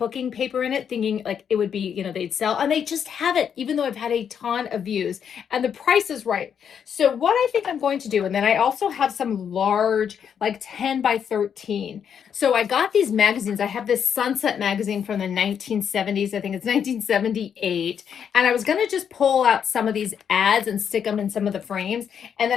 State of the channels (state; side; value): quieter; right; 7.9 dB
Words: paper in it, thinking like it would be, you know, they'd sell, and they just haven't, even though I've had a ton of views, and the price is right. So what I think I'm going to do, and then I also have some large, like 10 by 13. So I got these magazines. I have this Sunset magazine from the 1970s. I think it's 1978. And I was going to just pull out some of these ads and stick them in some of the frames. And